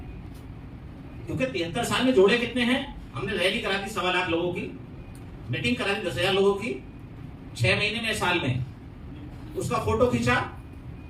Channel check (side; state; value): both; identical; correlation 1.00